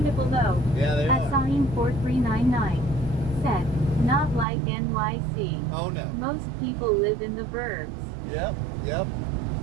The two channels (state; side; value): drops out; left; at 4.5 s